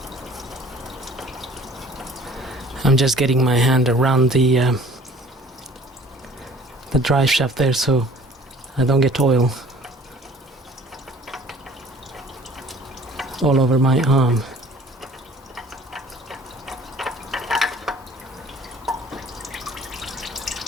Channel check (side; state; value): both; normal; correlation 0.50